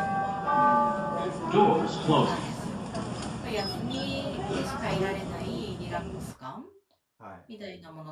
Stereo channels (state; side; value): identical; both; correlation 1.00